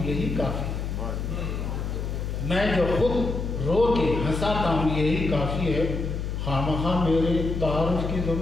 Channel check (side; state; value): left; noise; hum, 3 dB below the sound